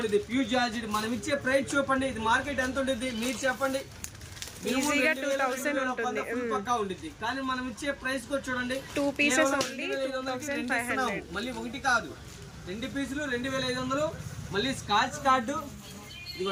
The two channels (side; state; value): both; identical; correlation 1.00